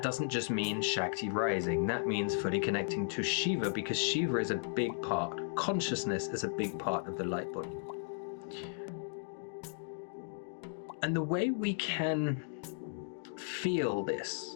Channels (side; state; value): right; silent; digital silence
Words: doesn't just mean Shakti rising, that means fully connecting to Shiva, because Shiva is a big part, consciousness is a big part of the light body. And the way we can feel